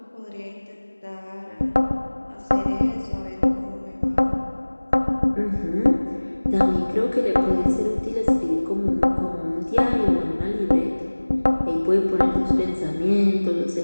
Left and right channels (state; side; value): inverted; both; correlation -1.00